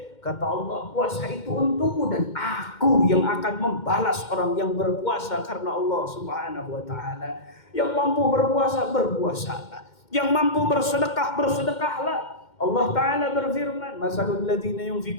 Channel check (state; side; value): late; right; 2.1 ms